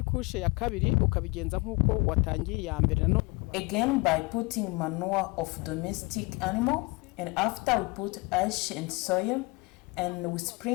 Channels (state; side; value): quieter; right; 26.0 dB